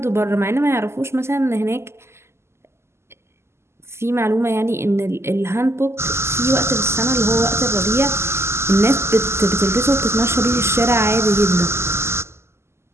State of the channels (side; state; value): left; late; 0.13 ms